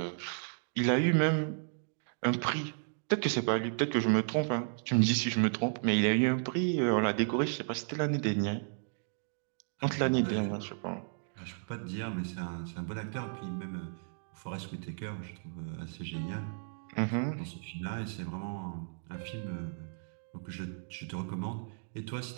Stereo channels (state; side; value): silent; left; digital silence